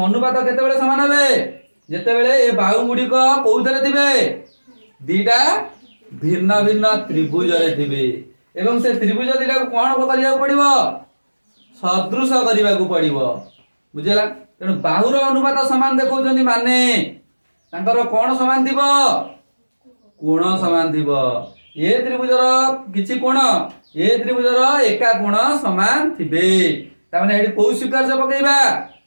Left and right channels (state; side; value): inverted; both; correlation -1.00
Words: अनुपात केते बेले समान हेबे जेते बेले ए बाहु गुडी को कोउथरे थिबे दीटा भिन्न भिन्न त्रिभुज रे थिबे एवं से त्रिभुज दीटा को कोन करिया पड़िबो सदृश करिया को पड़िबो बुझला तेणु बाहुर अनुपात समान देखौछन्ती माने तांकर कोण समान थिबो कोण समान थिबो ए त्रिभुजर किछि कोण ए त्रिभुजर एका कोण समान थिबे ता माने एडी कोउ स्वीकार्य पकेइबा